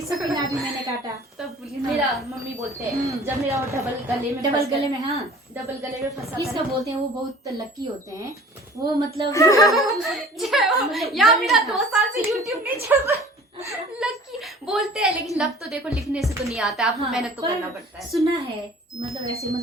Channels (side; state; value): both; normal; correlation 0.47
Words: सबके नाम भी मैंने काटा। तब मेरा मम्मी बोलते हैं जब मेरा वो डबल गले में हाँ, डबल गले में फंसा किसका बोलते हैं, वो बहुत लकी होते हैं वो, मतलब यार मेरा 2 साल से YouTube नहीं चल रहा। लकी बोलते हैं, लेकिन लक तो देखो लिखने से तो नहीं आता, आपको मेहनत तो करना पड़ता है। सुना है, मतलब ऐसे,